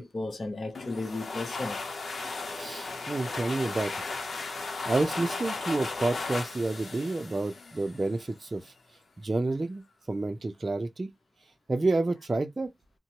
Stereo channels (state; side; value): normal; both; correlation 0.94